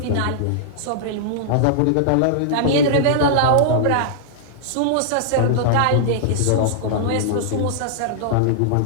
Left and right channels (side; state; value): both; different; correlation -0.02